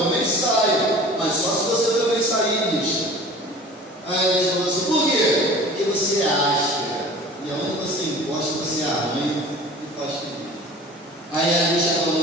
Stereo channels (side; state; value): both; normal; correlation 0.42